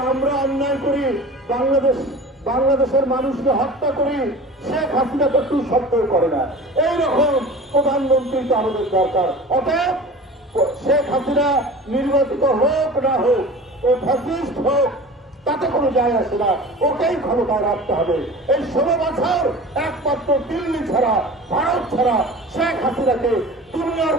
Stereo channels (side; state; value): both; normal; correlation 0.38